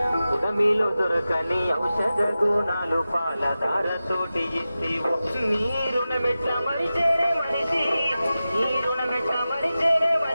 ఉదమిలో దొరకని ఔషధ గుణాలు పాలధారతోటి ఇస్తేవో నీ రుణమెట్ట మరిచేరే మనిషి నీ రుణమెట్ట మరిచేరే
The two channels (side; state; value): both; inverted; correlation -0.94